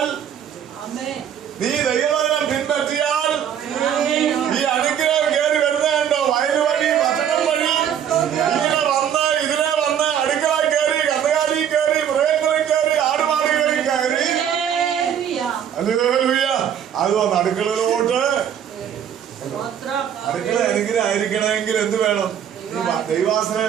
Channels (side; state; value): left; quieter; 9.0 dB